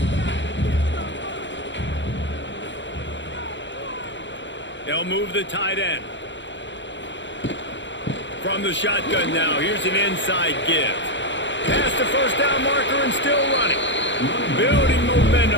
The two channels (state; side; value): late; right; 0.53 ms